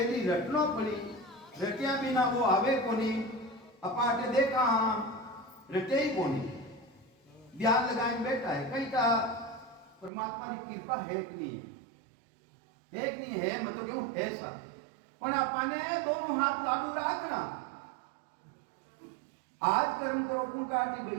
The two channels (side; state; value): left; drops out; at 10.1 s